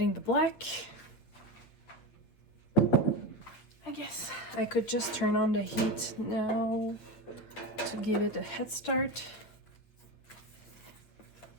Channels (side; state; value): right; late; 8.4 ms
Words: the black. I guess I could just turn on the heat now to give it a head start.